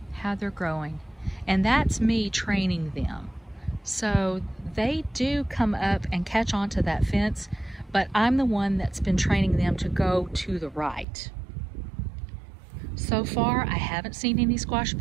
how they're growing. And that's me training them. So they do come up and catch onto that fence, but I'm the one that's been training them to go to the right. So far, I haven't seen any squash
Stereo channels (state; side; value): drops out; left; at 11.1 s